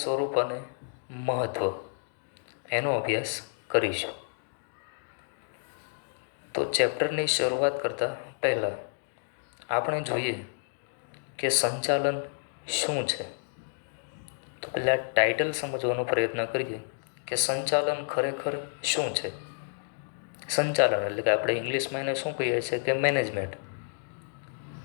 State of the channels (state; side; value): silent; right; digital silence